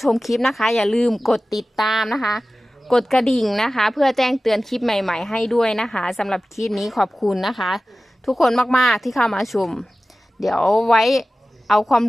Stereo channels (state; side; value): normal; both; correlation 0.96